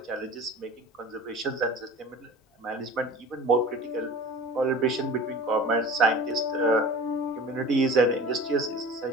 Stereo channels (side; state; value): both; normal; correlation 0.38